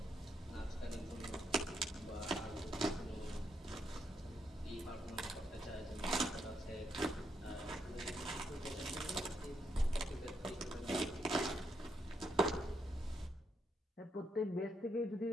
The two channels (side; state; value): both; normal; correlation 0.78